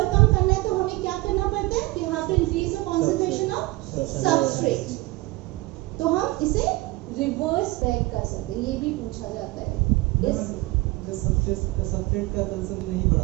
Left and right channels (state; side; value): quieter; left; 20.7 dB